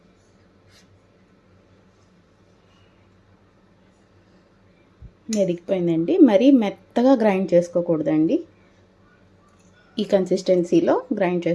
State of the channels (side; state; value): both; identical; correlation 1.00